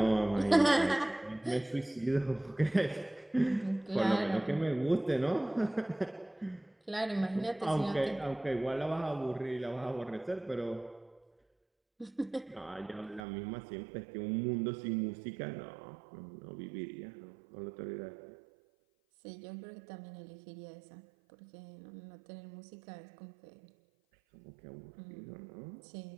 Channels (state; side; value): drops out; left; at 13.2 s